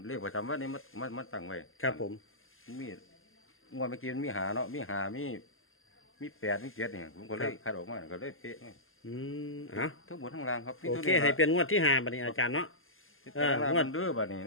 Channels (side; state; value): right; late; 0.60 ms